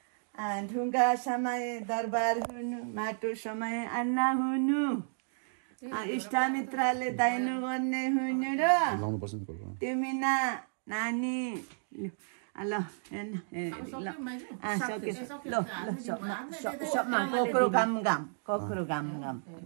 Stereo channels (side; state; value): left; silent; digital silence